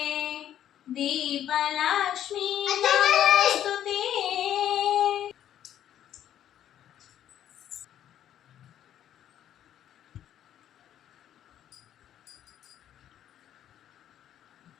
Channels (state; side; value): quieter; right; 10.9 dB